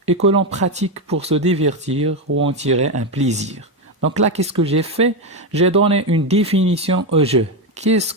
et que l'on pratique pour se divertir ou en tirer un plaisir. Donc là, qu'est-ce que j'ai fait? J'ai donné une définition au jeu. Qu'est-ce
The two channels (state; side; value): normal; both; correlation 0.10